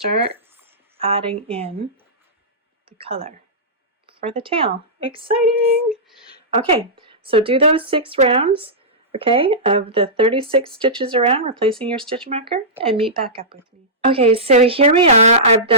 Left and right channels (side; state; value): both; normal; correlation -0.16